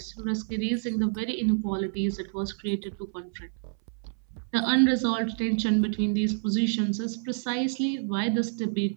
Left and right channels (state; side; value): silent; left; 59 dB below the other